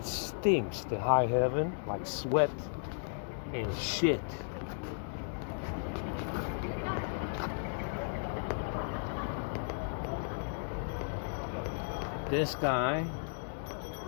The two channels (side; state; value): right; silent; digital silence